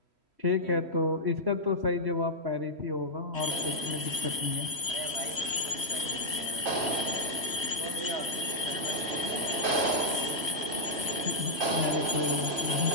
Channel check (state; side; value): late; left; 3.1 ms